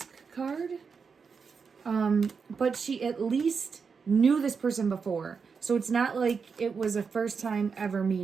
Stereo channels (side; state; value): left; quieter; 5.6 dB